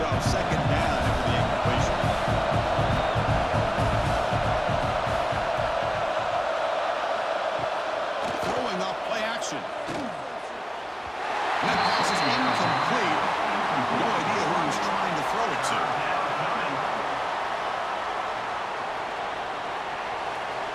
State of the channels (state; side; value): identical; both; correlation 1.00